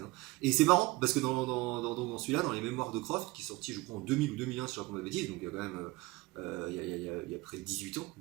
Hein. Et c'est marrant parce que dans celui-là, dans les Mémoires de Croft, qui est sorti, je crois, en 2000 ou 2001, si je raconte ma bêtise, donc il y a quand même. Il y a près de 18 ans,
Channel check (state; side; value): quieter; left; 21.9 dB